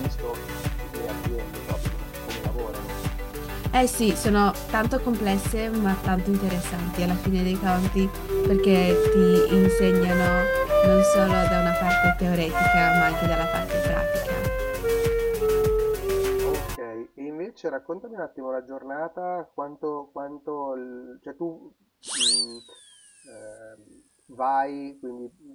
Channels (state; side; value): identical; both; correlation 1.00